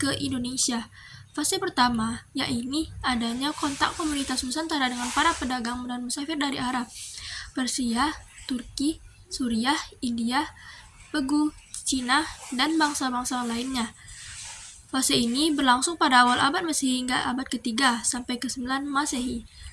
Indonesia. Fase pertama, yaitu adanya kontak komunitas Nusantara dengan para pedagang dan musafir dari Arab, Persia, Turki, Suriah, India, Pegu, Cina, dan bangsa-bangsa lainnya. Fase ini berlangsung pada awal abad Masehi hingga abad ke-3 sampai ke-9 Masehi.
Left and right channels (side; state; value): both; identical; correlation 1.00